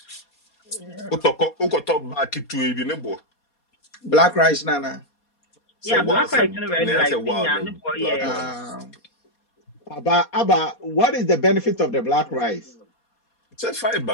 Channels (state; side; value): late; right; 4.2 ms